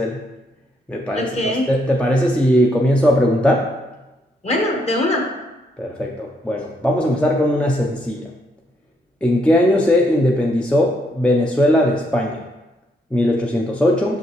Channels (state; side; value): normal; both; correlation 0.74